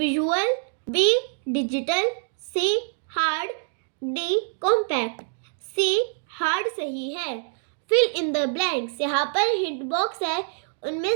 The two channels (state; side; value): silent; left; 61 dB below the other